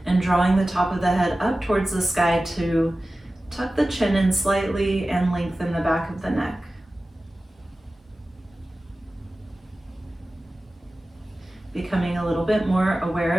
and drawing the top of the head up towards the sky to tuck the chin in slightly and lengthen the back of the neck. Becoming a little bit more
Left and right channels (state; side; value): normal; both; correlation 0.96